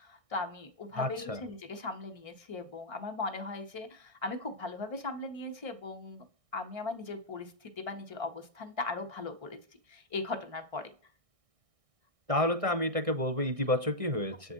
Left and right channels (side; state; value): left; late; 1.6 ms